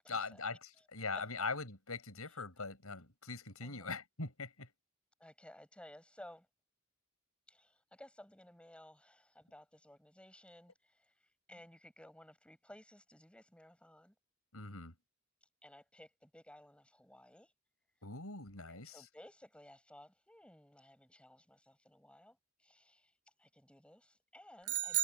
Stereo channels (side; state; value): both; normal; correlation -0.10